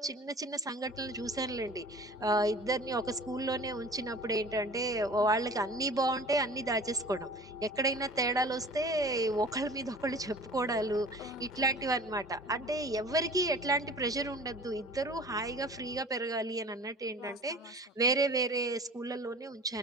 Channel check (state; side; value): normal; both; correlation 0.43